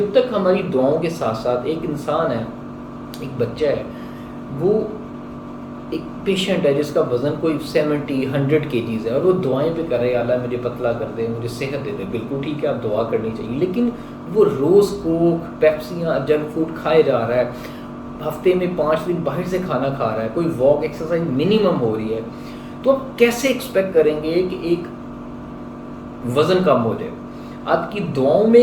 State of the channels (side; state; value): both; identical; correlation 1.00